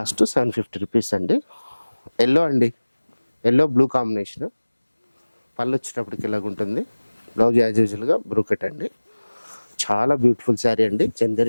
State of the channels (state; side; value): inverted; both; correlation -1.00